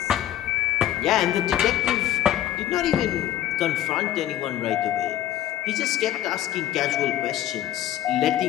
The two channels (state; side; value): quieter; right; 12.2 dB